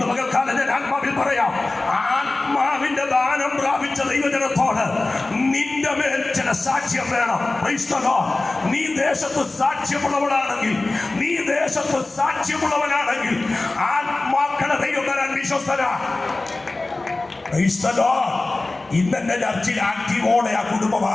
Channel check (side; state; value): right; quieter; 3.1 dB